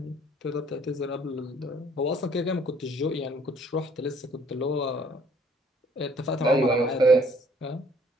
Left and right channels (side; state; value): both; normal; correlation 0.60